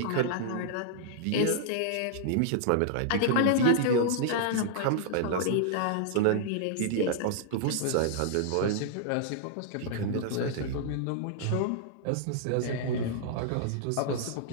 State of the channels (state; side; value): different; both; correlation -0.01